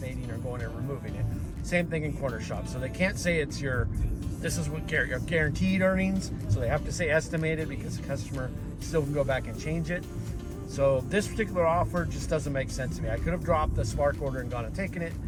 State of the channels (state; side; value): identical; both; correlation 1.00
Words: or going and removing it. Same thing in Corner Shop. So they can't say it's this is what your guaranteed earnings. So they have to say estimated, because the customer still can go back and change it. So this particular offer just doesn't make sense to me. I could have dropped the Spark order and gone and taken it.